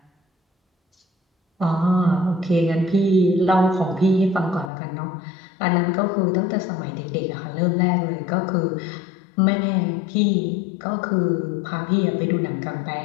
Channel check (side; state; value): right; drops out; at 4.7 s